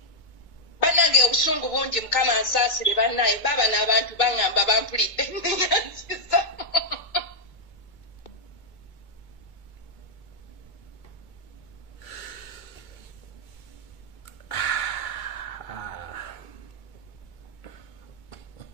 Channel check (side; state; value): right; late; 2.2 ms